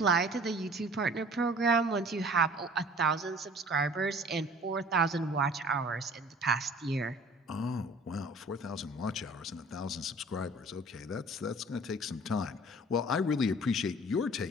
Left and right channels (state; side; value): normal; both; correlation 0.48